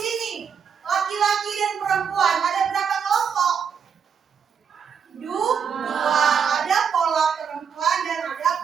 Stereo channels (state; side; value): quieter; left; 7.0 dB